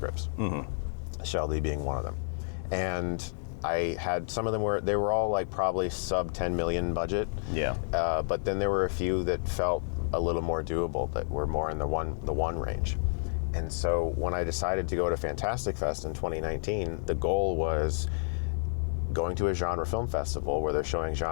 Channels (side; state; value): right; silent; digital silence